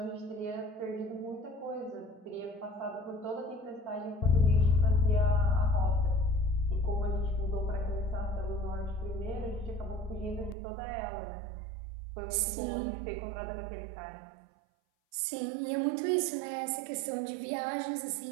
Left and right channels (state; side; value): drops out; left; at 10.6 s